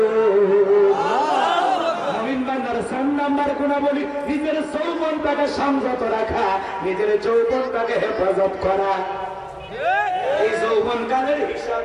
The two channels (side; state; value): both; identical; correlation 1.00